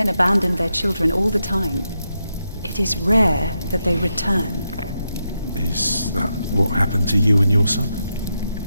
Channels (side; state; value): both; inverted; correlation -0.85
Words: abandon their children all the time. It is rare that they return. Is that what happened to you and your son?